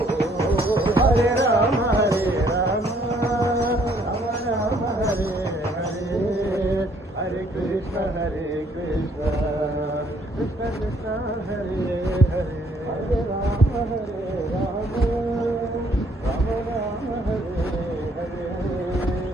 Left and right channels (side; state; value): both; normal; correlation 0.65